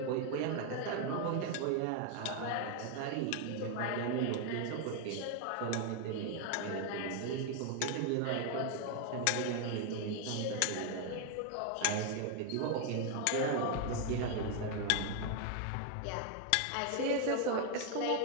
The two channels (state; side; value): different; both; correlation 0.00